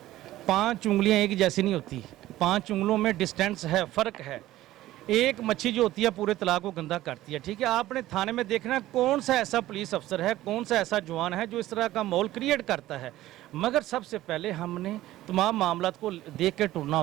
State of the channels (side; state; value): left; quieter; 15.3 dB